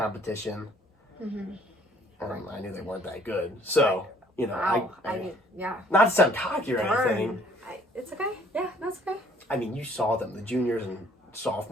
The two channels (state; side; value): normal; both; correlation 0.60